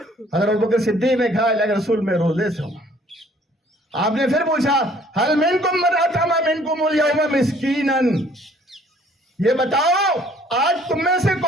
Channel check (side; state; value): both; normal; correlation 0.58